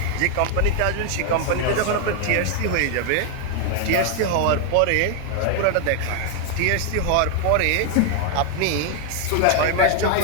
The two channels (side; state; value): both; different; correlation 0.00